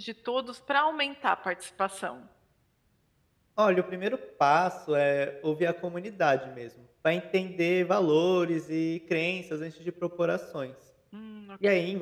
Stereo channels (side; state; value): both; identical; correlation 1.00